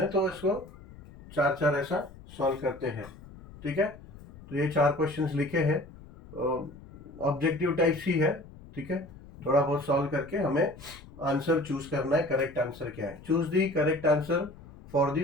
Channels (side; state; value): left; noise; rumble, 18 dB below the sound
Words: है, तो इसको चार चार ऐसा सॉल्व करते हैं। ठीक है, तो ये 4 क्वेश्चंस लिखे हैं, ऑब्जेक्टिव टाइप सी है। ठीक है, थोड़ा बहुत सॉल्व करके हमें आंसर चूज करना है। करेक्ट आंसर क्या है? Choose the correct answer for